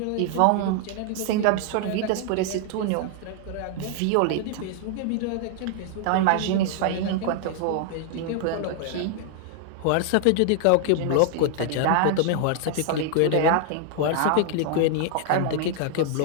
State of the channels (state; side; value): different; both; correlation 0.00